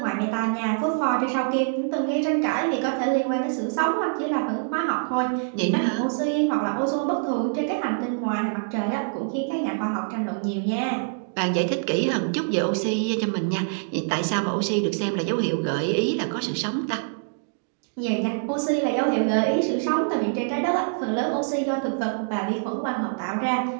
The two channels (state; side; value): silent; left; digital silence